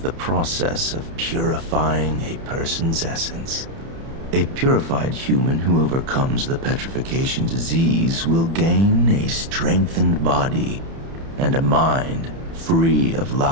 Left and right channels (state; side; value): late; left; 30 ms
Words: process of purifying a person's essence. A purified human who overcomes the petrification disease will gain a strengthened body and a mind free of